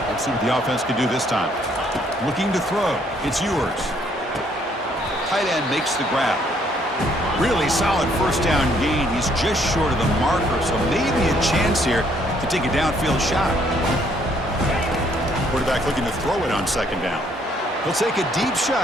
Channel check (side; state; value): both; normal; correlation 0.67